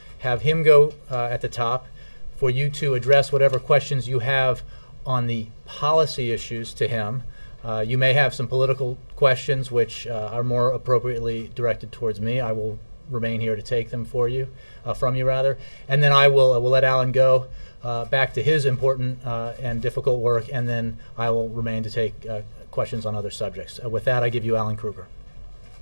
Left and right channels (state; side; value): inverted; both; correlation -1.00